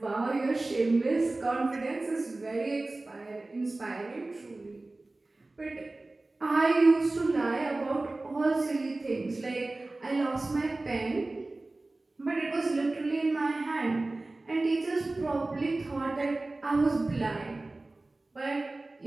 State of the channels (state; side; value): quieter; left; 3.0 dB